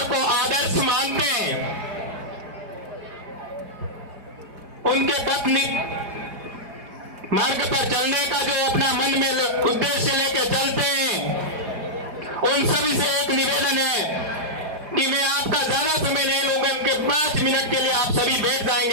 को आदर्श मानते हैं, उनके पत्नी मार्ग पर चलने का जो अपना मन में उद्देश्य लेके चलते हैं, उन सभी से एक निवेदन है कि मैं आपका ज्यादा समय नहीं लूंगा, उनके 5 मिनट के लिए आप सभी बैठ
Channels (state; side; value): late; left; 4.9 ms